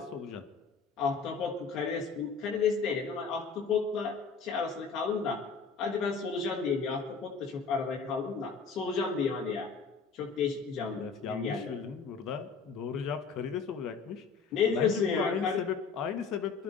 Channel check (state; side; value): quieter; right; 5.2 dB